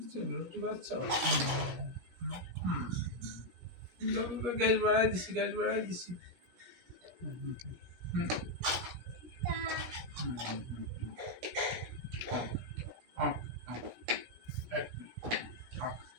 রুটি বাচ্চা গ্যাস বাড়াই দিছি, গ্যাস বাড়াই দিছি।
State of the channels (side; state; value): left; late; 17 ms